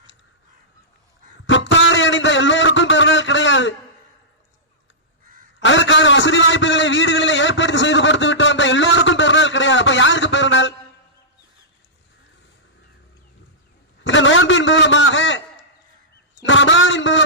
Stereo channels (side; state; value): both; normal; correlation -0.14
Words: புத்தாடை அணிந்த எல்லோருக்கும் பெருநாள் கிடையாது. அதற்கான வசதி வாய்ப்புகளை வீடுகளில் ஏற்படுத்தி செய்து கொடுத்து விட்டு வந்த எல்லோருக்கும் பெருநாள் கிடையாது. அப்ப யாருக்கு பெருநாள்? இந்த நோன்பின் மூலமாக, இந்த ரமலானின்